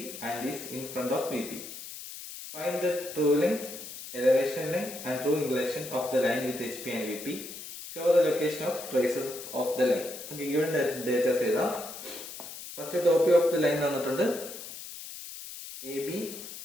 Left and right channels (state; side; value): noise; left; hiss, 11 dB below the sound